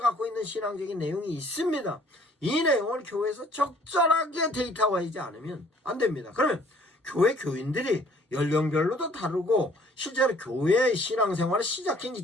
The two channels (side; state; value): both; normal; correlation 0.57